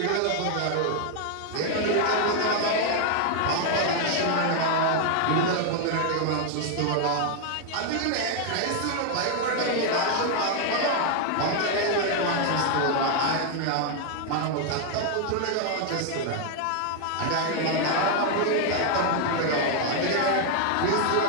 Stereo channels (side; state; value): both; different; correlation 0.00